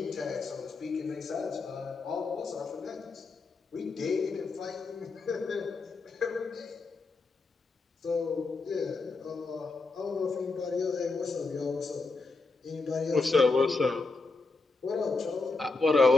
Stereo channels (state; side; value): quieter; right; 3.8 dB